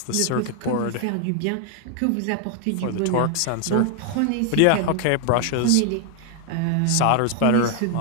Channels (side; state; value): both; different; correlation 0.00